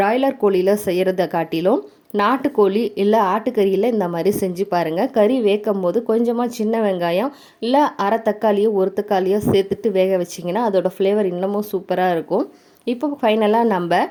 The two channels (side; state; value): both; identical; correlation 1.00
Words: கோழியில் செய்கிறத காட்டிலும் நாட்டுக்கோழி இல்லை ஆட்டுக்கறியில் இந்த மாதிரி செஞ்சு பாருங்கள். கறி வேக்கும் போது கொஞ்சமாக சின்ன வெங்காயம் இல்லை அரை தக்காளியோ ஒரு தக்காளியோ சேர்த்துட்டு வேக வச்சிங்கன்னா அதோடய ஃப்ளேவர் இன்னமும் சூப்பராக இருக்கும். இப்போ ஃபைனலாக நம்ம